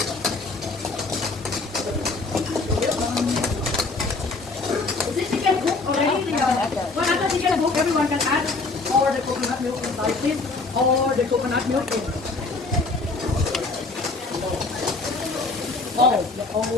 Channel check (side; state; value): right; quieter; 3.6 dB